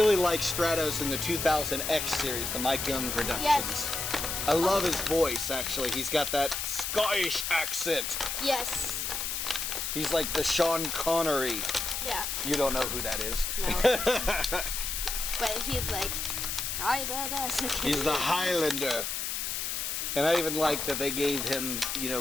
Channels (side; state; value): left; noise; hiss, 2 dB below the sound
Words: like Stratos in the 2000X series, the Mike Young Productions. Yes. I love his voice, actually. He's got that Scottish accent. Yes. He's like the Sean Connery. Yeah. You don't know who that is. No. But he's like, He's the Highlander. And I even like that they gave him, you know,